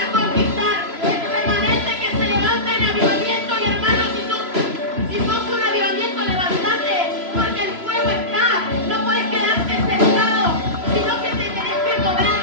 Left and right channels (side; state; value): left; late; 3.0 ms